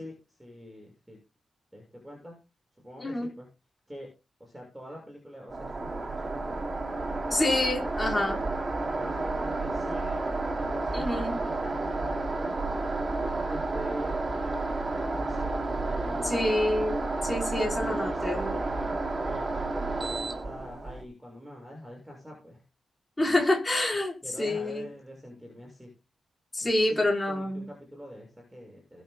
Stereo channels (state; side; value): normal; both; correlation 0.90